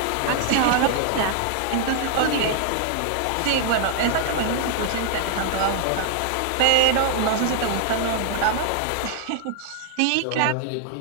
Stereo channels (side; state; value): both; different; correlation 0.00